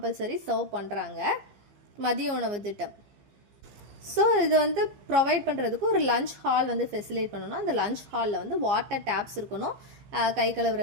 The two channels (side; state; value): left; late; 15 ms